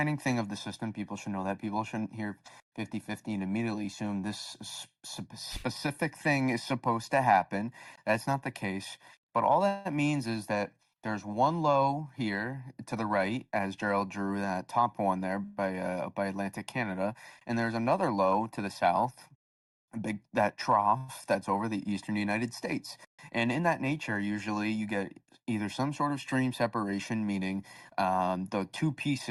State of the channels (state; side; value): identical; both; correlation 1.00